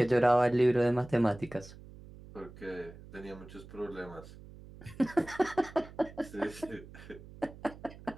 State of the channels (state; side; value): noise; right; hum, 18 dB below the sound